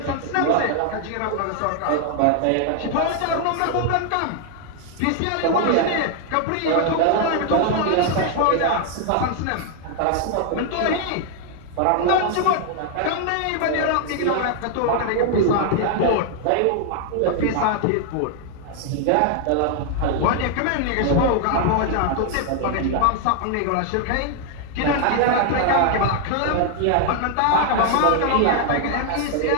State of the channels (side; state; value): both; different; correlation 0.00